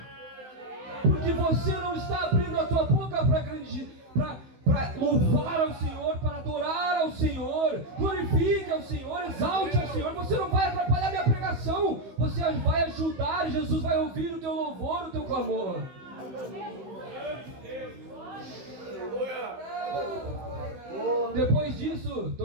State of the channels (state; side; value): late; left; 15 ms